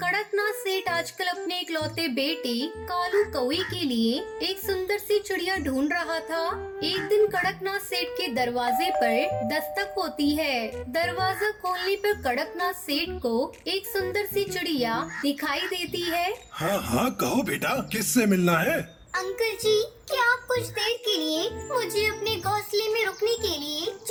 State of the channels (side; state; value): both; identical; correlation 1.00